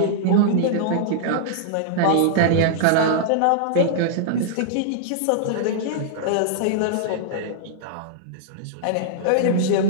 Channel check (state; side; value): different; both; correlation -0.01